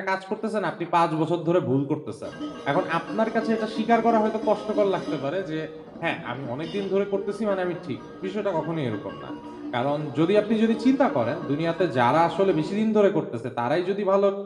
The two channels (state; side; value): identical; both; correlation 1.00